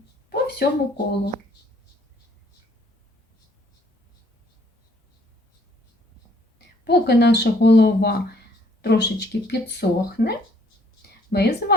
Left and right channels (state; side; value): normal; both; correlation 0.63